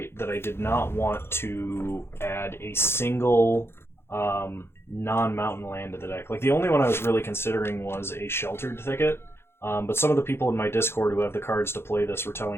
that I did not want to add a single non-mountain land to the deck. Like the only one I was really considering was a Sheltered Thicket. But some of the people in my Discord who have the cards to play this were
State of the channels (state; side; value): late; right; 0.12 ms